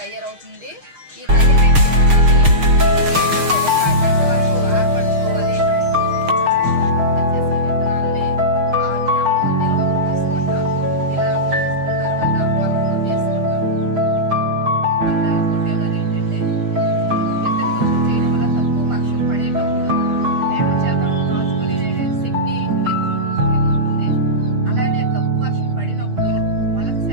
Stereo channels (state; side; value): late; left; 6.5 ms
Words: తయారవుతుంది. ఈ తయారైన